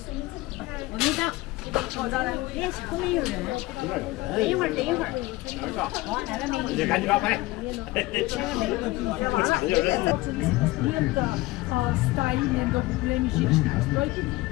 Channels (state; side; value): quieter; right; 19.7 dB